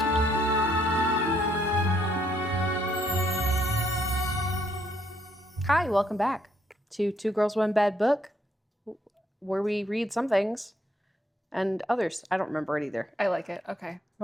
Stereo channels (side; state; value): both; normal; correlation 0.71